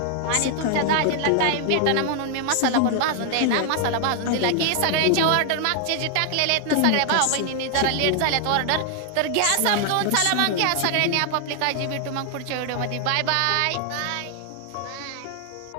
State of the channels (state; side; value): different; both; correlation 0.00